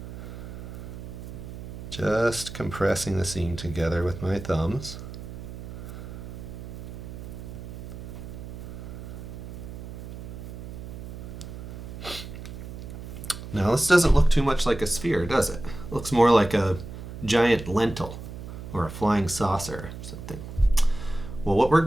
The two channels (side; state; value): right; noise; hum, 10 dB below the sound